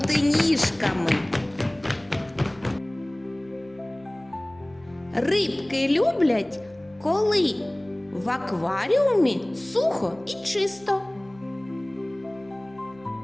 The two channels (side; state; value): left; noise; hum, 27 dB below the sound